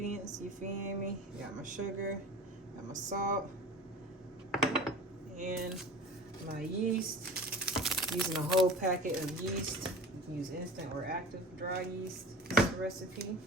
you feel me? Got my sugar, got my salt, and my yeast. Using a whole packet of yeast. You can use instant or active dry yeast. This is the recipe.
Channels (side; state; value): both; normal; correlation 0.38